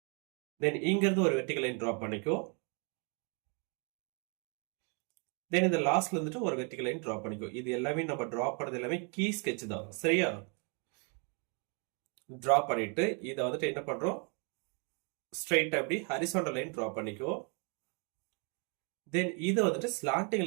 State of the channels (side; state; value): left; quieter; 36.3 dB